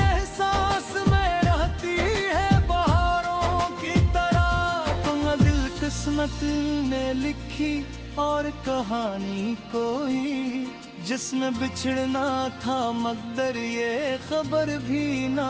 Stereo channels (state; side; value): identical; both; correlation 1.00